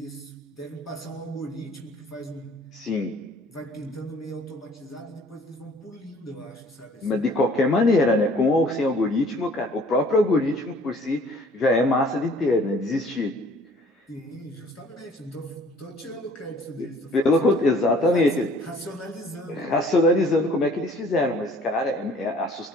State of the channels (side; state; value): both; normal; correlation 0.55